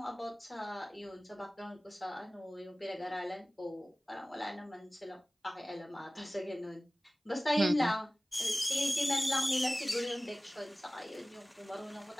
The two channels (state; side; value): normal; both; correlation 0.98